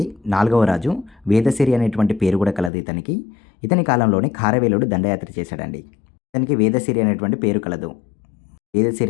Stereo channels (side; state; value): right; drops out; at 2.7 s